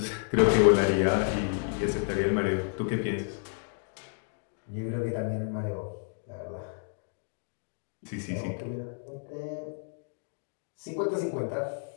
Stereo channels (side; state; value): right; silent; 57 dB below the other